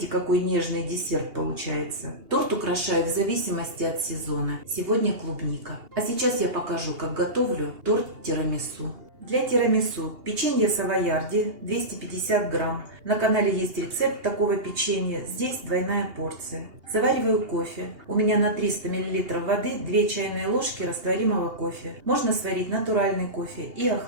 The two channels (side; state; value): left; late; 2.8 ms